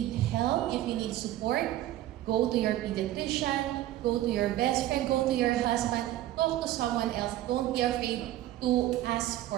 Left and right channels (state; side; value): quieter; left; 14.1 dB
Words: help, if you need support, go to your pediatrician, go to your best friend, go to your husband, talk to someone else. Don't be afraid to ask